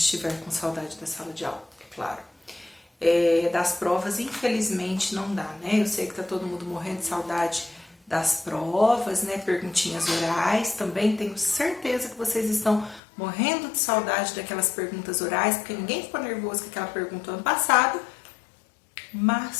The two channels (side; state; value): right; drops out; at 13.0 s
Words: com saudade da sala de aula, é claro. Das provas, infelizmente, não dá, né? Eu sei que tá todo mundo morrendo de saudade das provas, né? Perguntinhas orais, também tenho certeza que vocês estão morrendo de saudade daquelas perguntas orais, porque ninguém ficou nervoso com aquela pergunta ano passado,